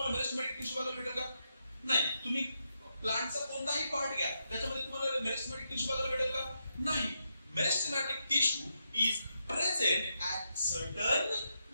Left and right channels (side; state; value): both; inverted; correlation -0.83